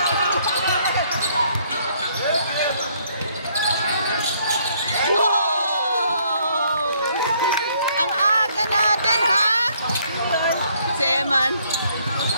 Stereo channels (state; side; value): inverted; both; correlation -0.67